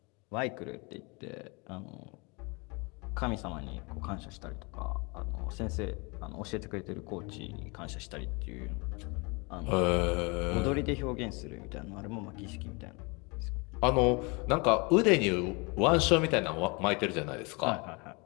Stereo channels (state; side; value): quieter; right; 29.2 dB